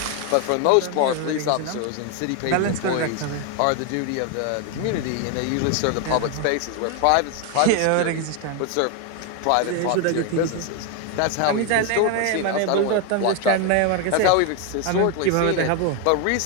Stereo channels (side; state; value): both; different; correlation 0.01